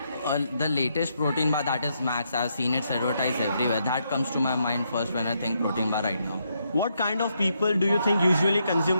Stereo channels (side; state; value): both; inverted; correlation -0.78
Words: The latest protein bar, that is Max, I've seen it advertised everywhere. That comes to my mind first when I think protein bar right now. What kind of people do you think usually